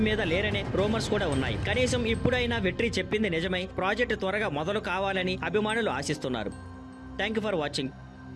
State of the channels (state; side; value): identical; both; correlation 1.00